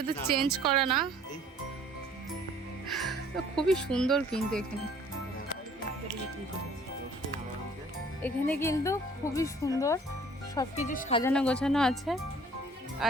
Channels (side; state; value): both; normal; correlation 0.55